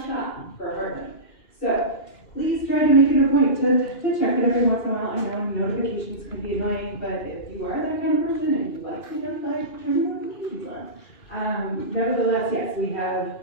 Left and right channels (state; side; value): late; right; 2.4 ms